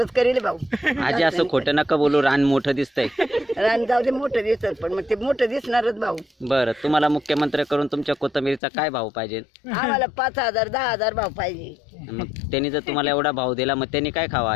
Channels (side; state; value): right; drops out; at 8.6 s